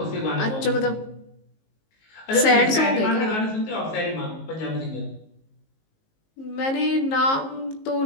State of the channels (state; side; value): late; right; 19 ms